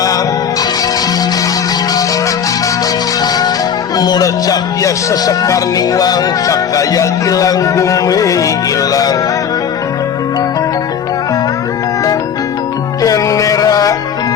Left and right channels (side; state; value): right; quieter; 7.8 dB